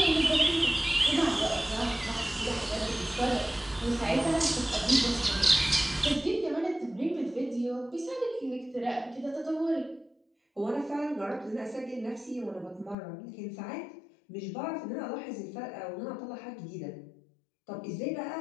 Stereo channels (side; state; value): right; drops out; at 13.0 s